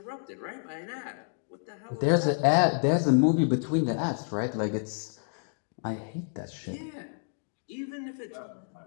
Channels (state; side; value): silent; right; digital silence